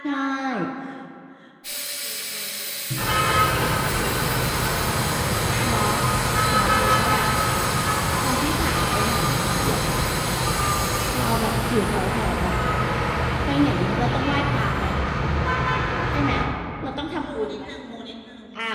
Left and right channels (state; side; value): identical; both; correlation 1.00